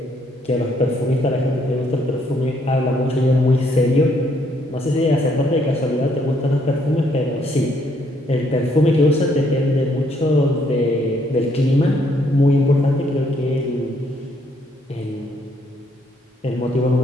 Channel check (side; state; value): both; normal; correlation 0.70